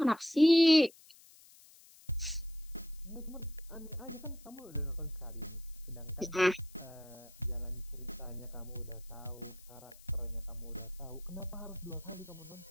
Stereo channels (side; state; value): left; noise; hiss, 23 dB below the sound